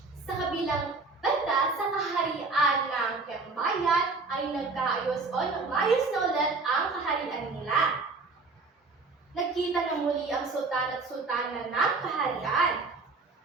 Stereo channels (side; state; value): left; quieter; 3.9 dB